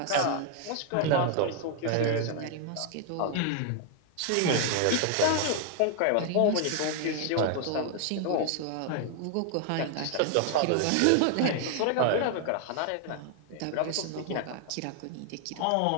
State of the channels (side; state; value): both; different; correlation 0.00